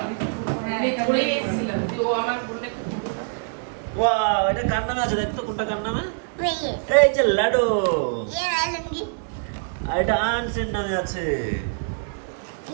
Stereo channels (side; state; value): left; silent; digital silence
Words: ওয়াও, এটা কার নামে আছে দেখ তো, কোনটা কার নামে? मैं ये এই যে লাডু। मैं लूंगी। আর এটা আনসের নামে আছে।